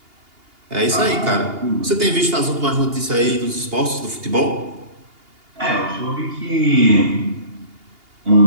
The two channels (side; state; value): left; late; 2.8 ms